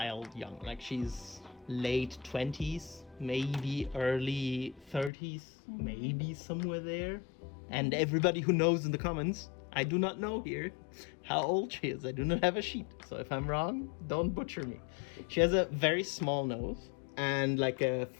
young. Like she's late 20s, maybe early 30s, maybe somewhere there. And everybody who knows in the comments, I do not know here how old she is. I do not have a sheet. So if I'm wrong, don't butcher me. She has a very small nose and like a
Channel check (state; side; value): drops out; right; at 5.1 s